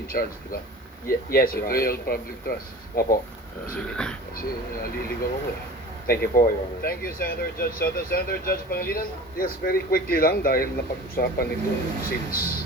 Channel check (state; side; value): normal; both; correlation 0.39